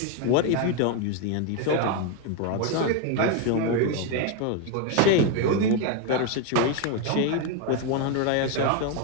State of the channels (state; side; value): different; both; correlation 0.01